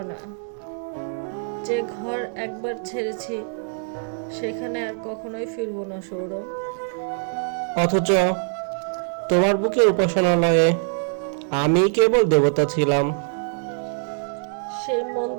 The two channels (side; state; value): left; silent; digital silence